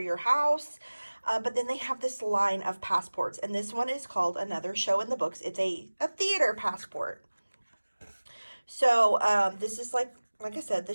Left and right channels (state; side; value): inverted; both; correlation -1.00